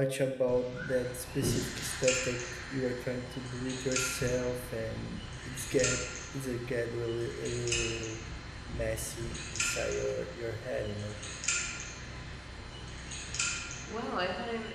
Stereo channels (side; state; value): both; identical; correlation 1.00